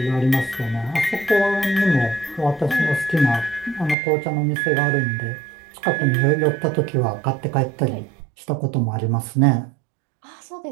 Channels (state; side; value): drops out; left; at 4.0 s